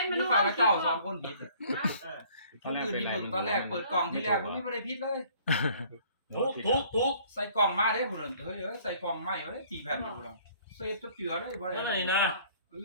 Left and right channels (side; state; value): both; inverted; correlation -0.56